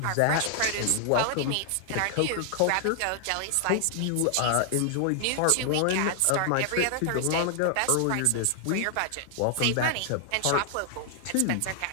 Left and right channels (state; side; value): different; both; correlation 0.00